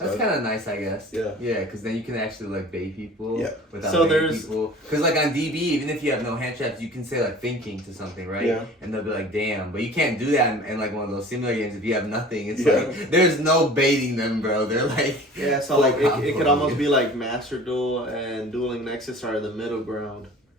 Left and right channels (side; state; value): both; normal; correlation 0.44